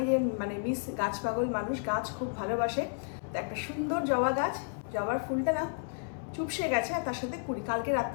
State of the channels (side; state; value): right; silent; 56 dB below the other